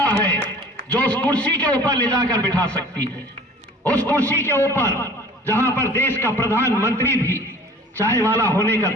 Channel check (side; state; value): both; normal; correlation 0.46